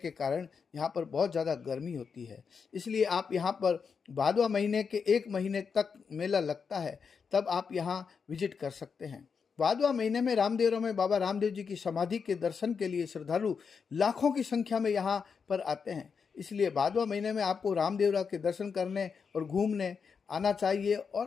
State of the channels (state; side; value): quieter; right; 5.9 dB